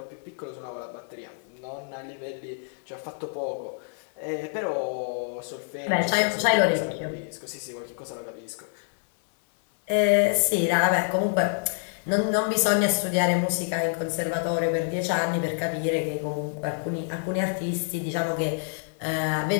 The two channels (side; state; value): right; silent; 57 dB below the other